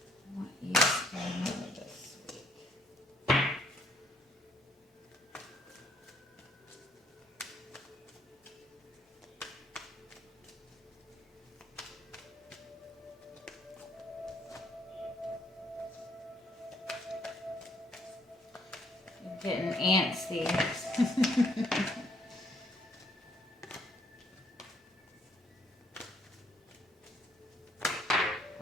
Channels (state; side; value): normal; both; correlation 0.67